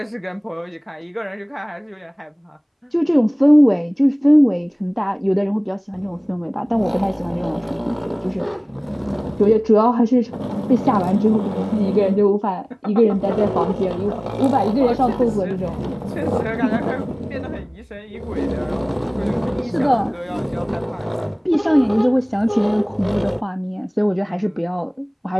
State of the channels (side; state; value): both; identical; correlation 1.00